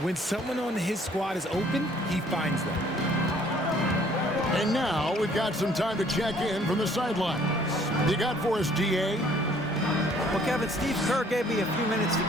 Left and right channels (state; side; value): normal; both; correlation 0.59